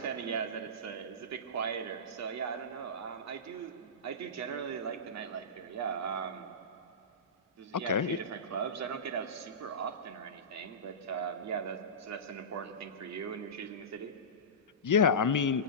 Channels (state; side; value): normal; both; correlation -0.19